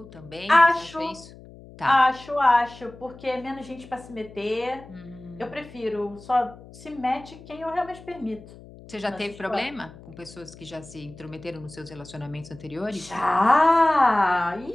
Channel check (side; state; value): left; noise; hum, 19 dB below the sound